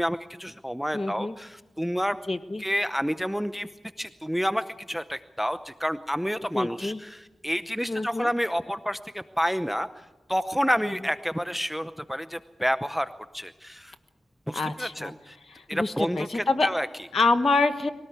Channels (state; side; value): normal; both; correlation 0.94